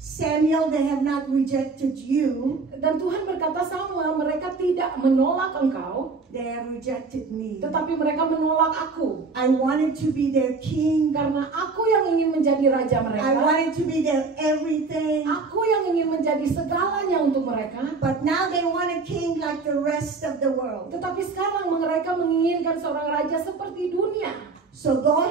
they have not rejected you. Dan Tuhan berkata, Samuel, mereka tidak menolak engkau, They have rejected me. tetapi mereka menolak aku. I wanted to be their king. Karena aku yang ingin menjadi raja I mereka. wanted to be their everything. Aku yang ingin menjadi segalanya untuk mereka. But now they want a king like the rest of the world. Tetapi sekarang mereka menginginkan seorang raja seperti dunia. So go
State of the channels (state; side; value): quieter; left; 4.3 dB